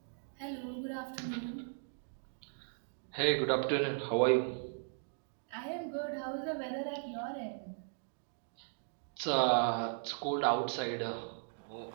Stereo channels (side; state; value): left; silent; digital silence